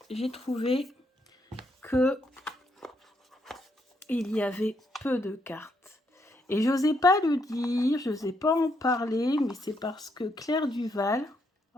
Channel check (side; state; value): both; normal; correlation 0.76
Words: j'ai trouvé que il y avait peu de cartes. Et j'osais pas le dire, je n'osais pas en parler, mais c'est parce que Claire Duval,